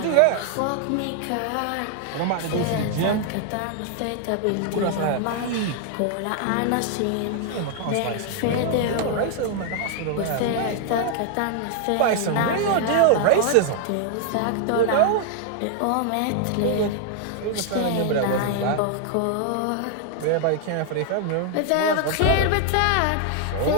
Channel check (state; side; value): different; both; correlation 0.00